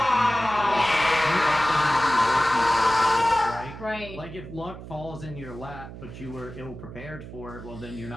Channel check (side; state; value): right; noise; hum, 13 dB below the sound